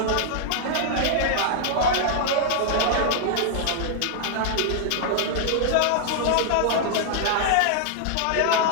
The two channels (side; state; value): both; different; correlation 0.00